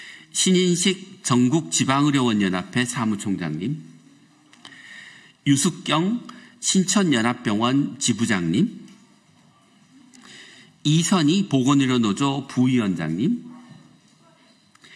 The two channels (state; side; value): identical; both; correlation 1.00